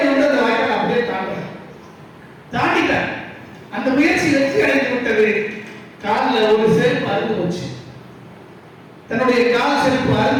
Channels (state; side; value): identical; both; correlation 1.00